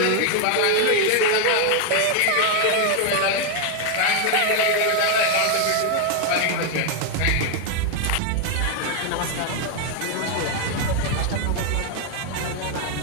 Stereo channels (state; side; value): different; both; correlation 0.01